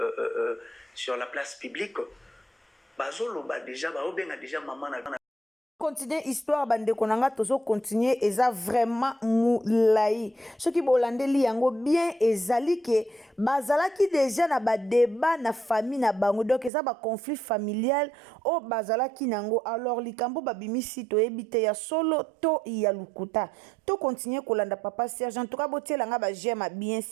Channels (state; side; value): drops out; left; at 16.7 s